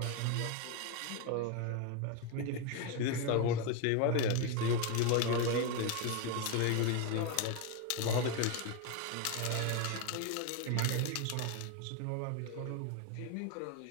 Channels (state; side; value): different; both; correlation 0.02